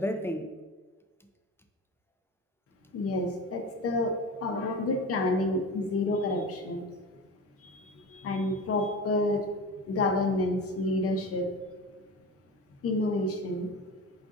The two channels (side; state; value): both; normal; correlation 0.30